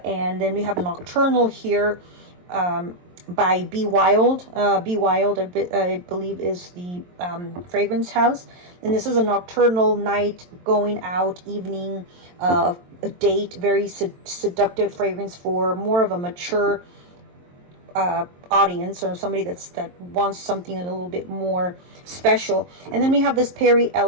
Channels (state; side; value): late; left; 22 ms